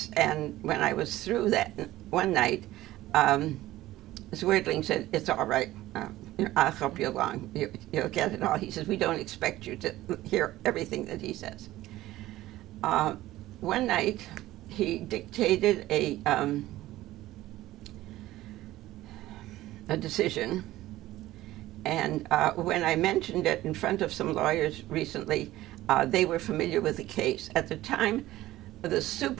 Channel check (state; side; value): quieter; left; 16.0 dB